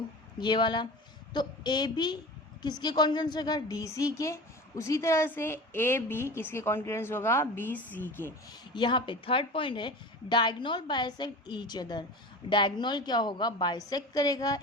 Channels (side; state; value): both; normal; correlation 0.33